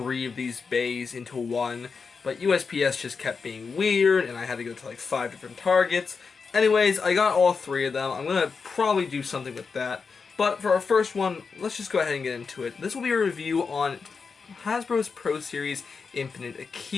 of these bays into one, but USPS just kept being weird and I had to go to like 5 different Targets. Anyways, I got all three of them. I'm going to probably do something with that. But for our first one, let's just go ahead and get into it. This will be a review on Hasbro's Pro Series Infinite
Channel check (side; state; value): right; quieter; 5.2 dB